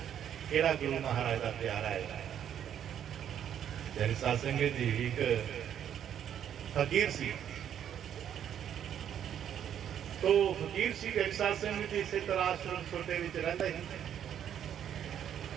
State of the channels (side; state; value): left; quieter; 9.6 dB